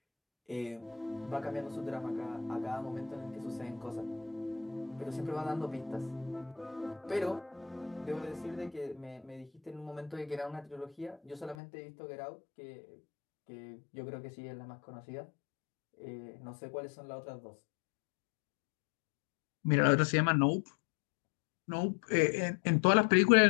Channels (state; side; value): drops out; right; at 11.6 s